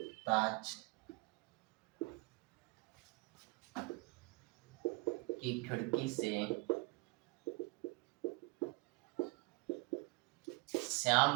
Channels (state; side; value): quieter; left; 26.6 dB